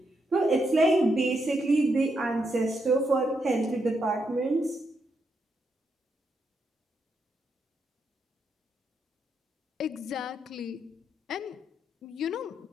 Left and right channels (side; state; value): both; normal; correlation 0.81